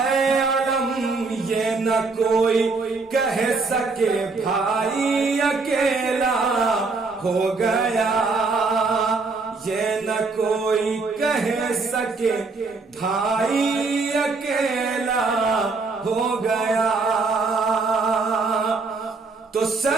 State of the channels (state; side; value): quieter; left; 4.0 dB